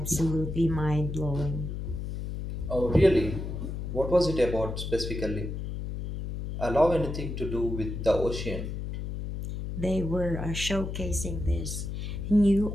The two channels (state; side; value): noise; left; hum, 5 dB below the sound